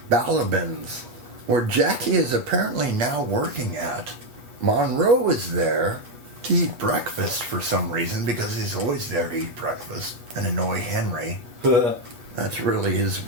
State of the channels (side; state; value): left; late; 8.5 ms